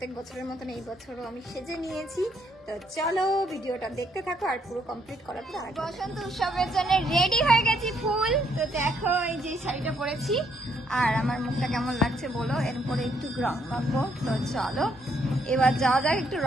বছরের মতন এই বছরও আমি সেজে নিয়েছি। তো চলো ভিডিওটা দেখতে থাকো, আর পুরো কমপ্লিট করার পর বসন্ত উৎসবের জন্য রেডি হয়ে গেছি ফুল। তো দেখো এই যে শাড়িটা পরেছি, আর আমার মুখটা কেমন লাগছে বলো। এরপরে একটু রং মাখবো। তো চলো এবার যাওয়া যাক একটু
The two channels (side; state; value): both; normal; correlation 0.72